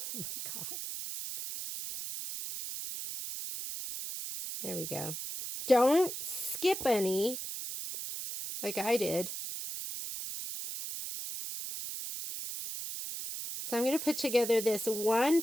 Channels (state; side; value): noise; right; hiss, 6 dB below the sound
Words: Oh my God. There we go. Don't skip any like I did. So I'm going to put together this one